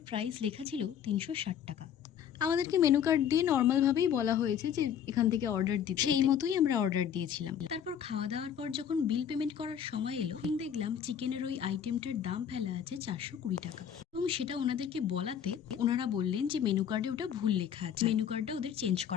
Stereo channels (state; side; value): quieter; right; 8.8 dB